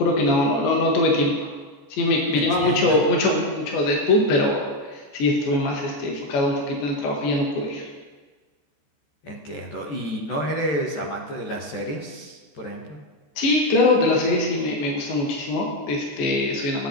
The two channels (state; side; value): late; right; 14 ms